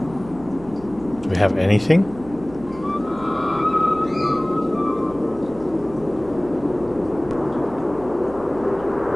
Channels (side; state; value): right; noise; hum, 19 dB below the sound